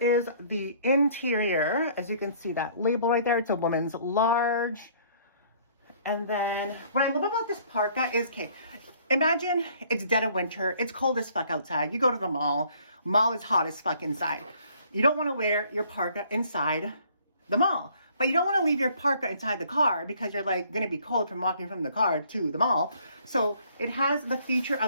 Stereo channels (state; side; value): inverted; both; correlation -0.59